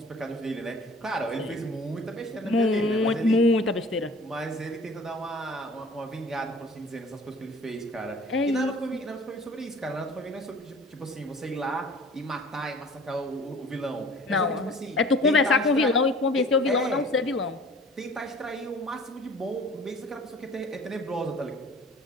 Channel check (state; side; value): normal; both; correlation 0.47